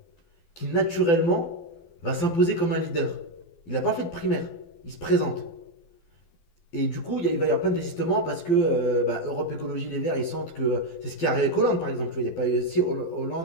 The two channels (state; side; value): late; right; 12 ms